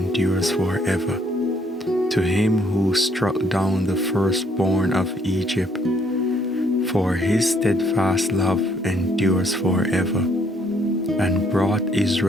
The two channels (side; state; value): both; normal; correlation 0.67